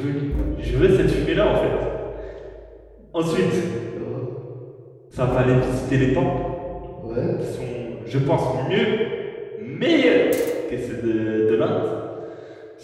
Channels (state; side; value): identical; both; correlation 1.00